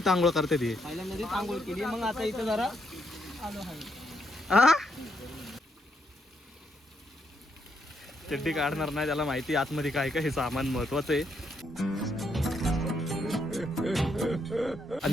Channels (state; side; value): normal; both; correlation 0.77